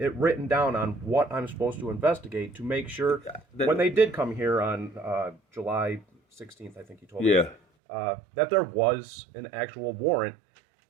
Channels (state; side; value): drops out; left; at 7.6 s